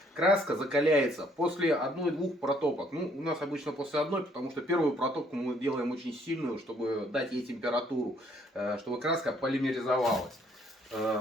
Краска закаляется после одной-двух протопок. Ну, у нас обычно после одной, потому что первую протопку мы делаем очень сильную, чтобы дать ей температуру, чтобы краска полимеризовалась.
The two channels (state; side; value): normal; both; correlation 0.65